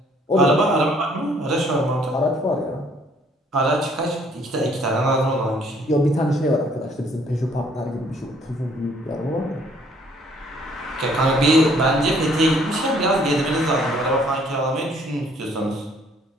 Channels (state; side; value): normal; both; correlation 0.62